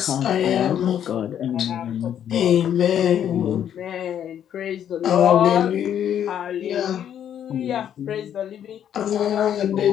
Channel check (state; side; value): quieter; right; 9.7 dB